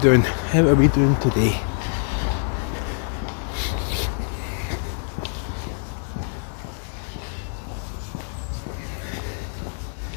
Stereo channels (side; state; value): right; silent; digital silence